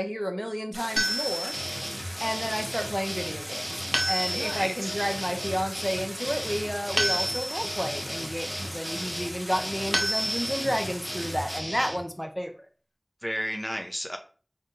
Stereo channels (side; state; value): both; identical; correlation 1.00